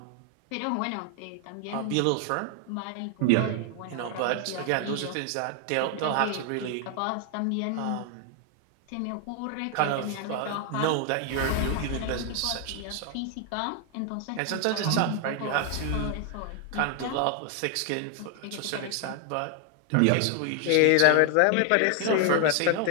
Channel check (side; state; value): both; different; correlation 0.00